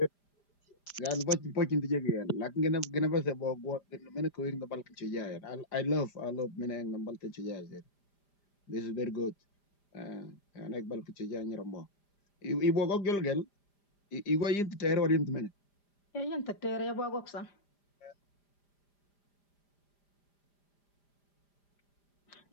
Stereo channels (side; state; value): right; late; 5.0 ms